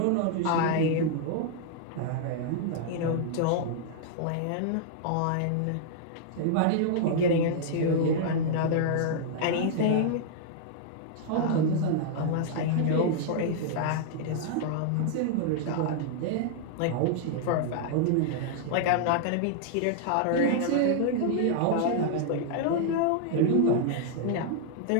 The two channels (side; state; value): both; different; correlation -0.01